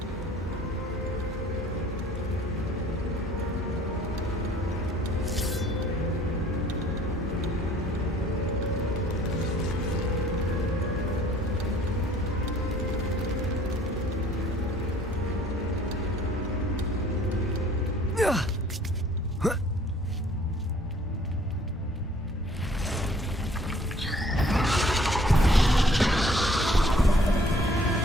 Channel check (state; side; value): normal; both; correlation 0.57